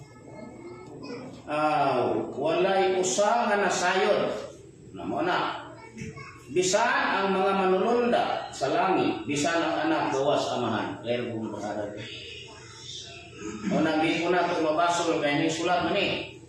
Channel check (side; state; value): both; identical; correlation 1.00